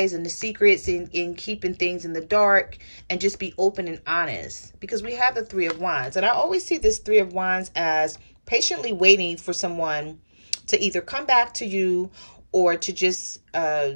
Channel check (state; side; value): inverted; both; correlation -1.00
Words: and the secrets, and keeping things in the dark, and just be open and honest. Because we have the Three of Wands. And I always see this Three of Wands as patiently waiting for someone to either come back to you, or to just